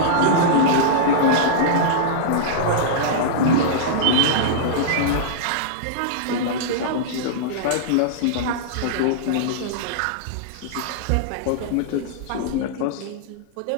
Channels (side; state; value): both; different; correlation -0.02